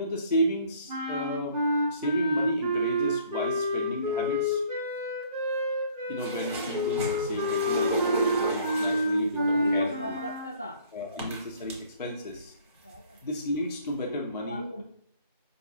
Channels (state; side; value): inverted; both; correlation -0.57